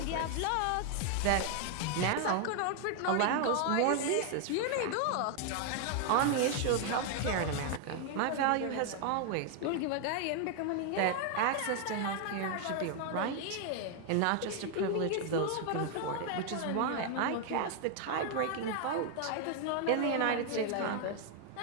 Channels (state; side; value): different; both; correlation 0.00